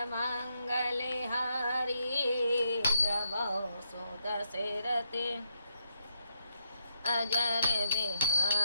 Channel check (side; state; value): both; inverted; correlation -0.78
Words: मंगले हरि, द्रवौ सुदशरथे अजर